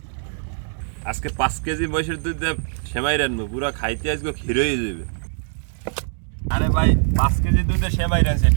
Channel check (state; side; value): silent; left; digital silence